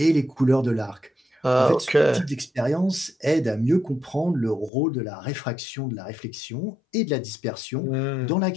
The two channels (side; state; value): right; drops out; at 4.7 s